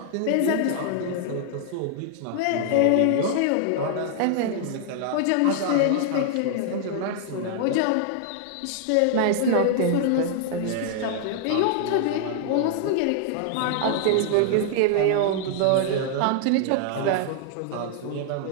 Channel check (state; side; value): different; both; correlation -0.01